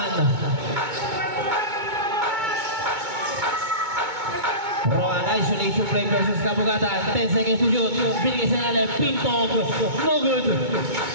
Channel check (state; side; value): late; left; 2.2 ms